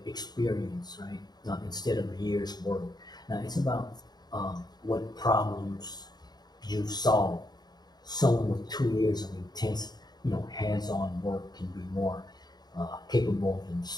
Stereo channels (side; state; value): right; late; 0.20 ms